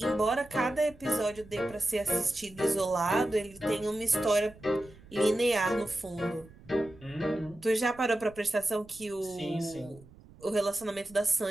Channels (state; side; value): noise; right; rumble, 22 dB below the sound